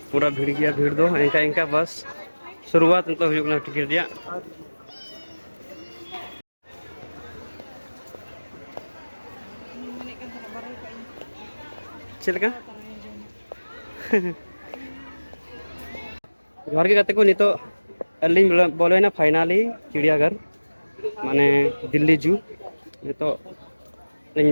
पूरा भीड़ गया भीड़ दो इनका इनका बस शुरुआत तो हुई टिकट दिया चलका घर के गाते को नहीं तो अली बोले फाइनली चिड़ियाघर माने दिल्ली जू नहीं तो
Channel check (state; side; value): inverted; both; correlation -1.00